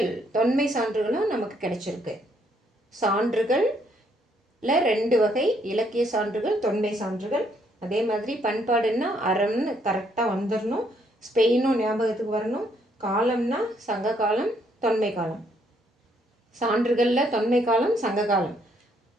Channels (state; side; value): normal; both; correlation 0.70